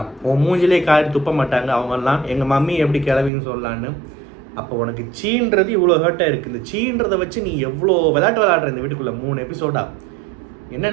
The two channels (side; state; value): left; drops out; at 3.3 s